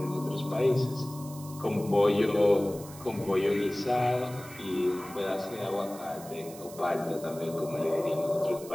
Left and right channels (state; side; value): noise; right; hiss, 17 dB below the sound